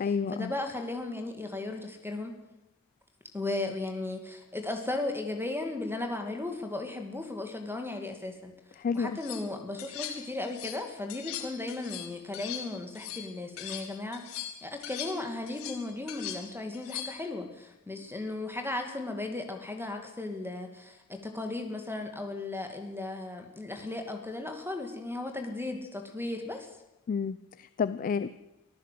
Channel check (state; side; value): quieter; right; 3.1 dB